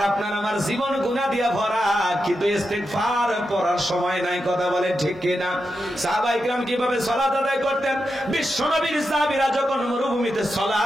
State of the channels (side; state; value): both; normal; correlation 0.88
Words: আপনার আমার জীবন গুনাহ দিয়া ভরা, কিন্তু ইস্তেগফার পড়ার সময় নাই। কথা বলে ঠিক কিনা? সাহাবায়ে কিরাম কিভাবে সালাত আদায় করতেন? বিশ্ব নবীর সাহাবীরা যখন মরুভূমিতে